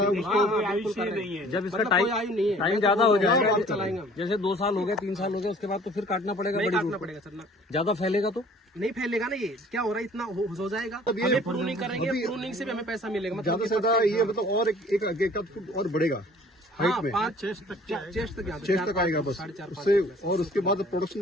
हैं। उसको- हाँ, हाँ, बिल्कुल कर रहे हैं। जब इसका मतलब कोई आयु नहीं है, टाइम मैं ज्यादा तो हो बोल रहा हूँ, जाएगा, आगे चलाएंगे हम। जैसे 2 साल हो गए, 3 साल हो गए, उसके बाद तो फिर काटना पड़ेगा। नहीं बड़ी काटना रूट को। पड़ेगा सर ना, ज्यादा फैलेगा तो नहीं फैलेगा ना। ये क्या हो रहा है, इतना हो जाएगा। अब ये- हमें प्रूनिंग करेंगे, अभी- प्रूनिंग से भी हमें पैसा मिलेगा। ज्यादा मतलब से ज्यादा ये मतलब और एक आगे का फुट और बढ़ेगा हाइट में, 5 चेस्ट तक यहाँ पे, 6 तक आएगा बस 4.5-5 उससे, और उसके बाद प्रोडक्शन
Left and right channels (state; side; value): normal; both; correlation 0.52